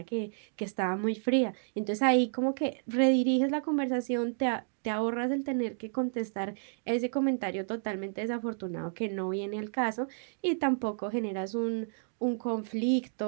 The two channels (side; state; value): left; silent; digital silence